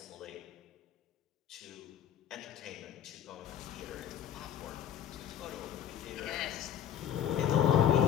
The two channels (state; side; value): quieter; right; 9.8 dB